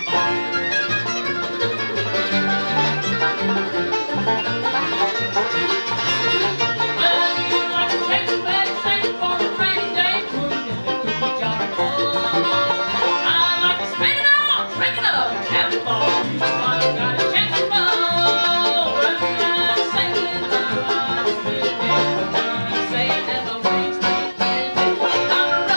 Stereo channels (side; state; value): both; inverted; correlation -1.00